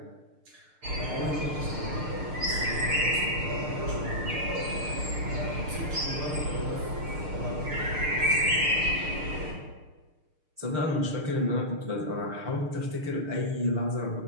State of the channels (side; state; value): left; late; 6.6 ms